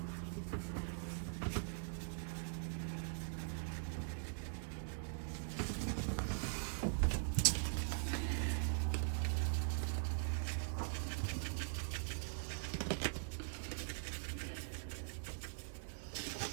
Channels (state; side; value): silent; left; digital silence